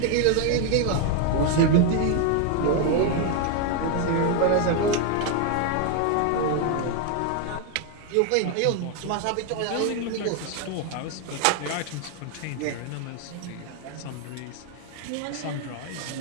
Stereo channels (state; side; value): different; both; correlation 0.01